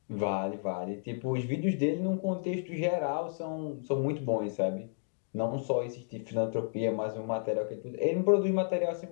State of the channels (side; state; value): right; silent; digital silence